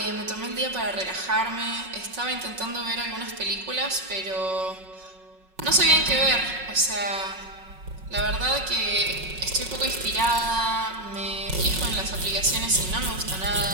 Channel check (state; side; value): late; left; 5.4 ms